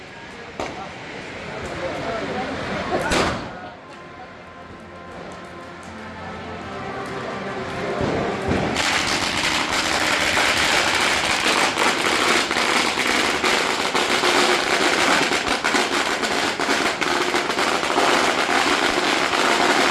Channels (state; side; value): identical; both; correlation 1.00